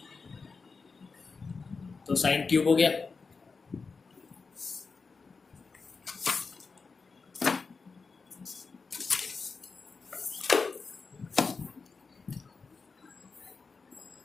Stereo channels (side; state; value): right; quieter; 4.6 dB